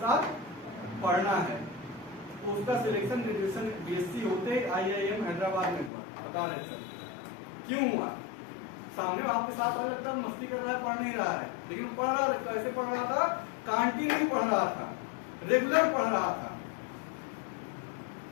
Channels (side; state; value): right; drops out; at 5.9 s